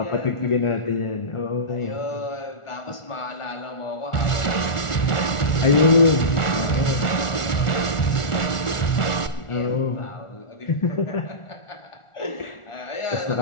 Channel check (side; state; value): right; late; 1.4 ms